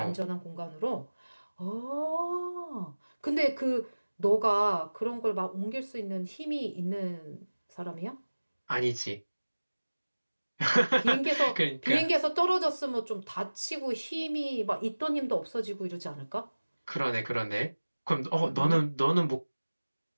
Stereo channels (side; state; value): both; inverted; correlation -1.00